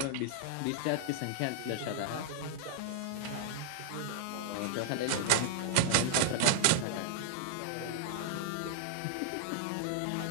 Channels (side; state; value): both; different; correlation 0.00